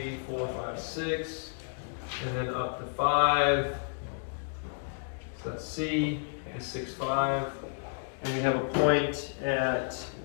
4, 5, 6. And then up to 5. So that's C is 6, 5. And we have a point at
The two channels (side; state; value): right; silent; digital silence